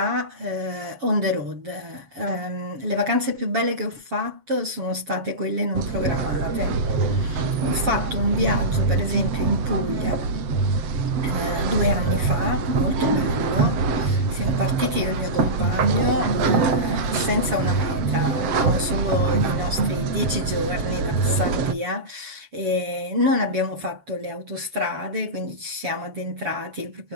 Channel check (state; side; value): late; left; 7.2 ms